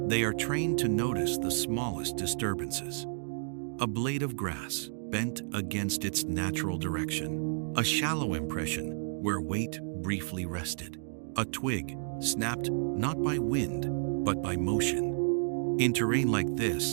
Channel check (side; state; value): left; silent; digital silence